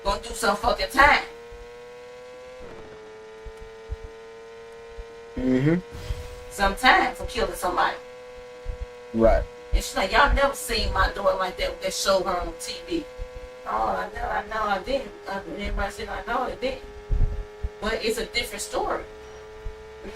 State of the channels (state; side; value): identical; both; correlation 1.00